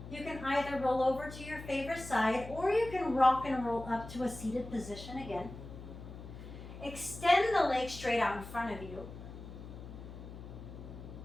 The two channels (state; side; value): noise; left; hum, 13 dB below the sound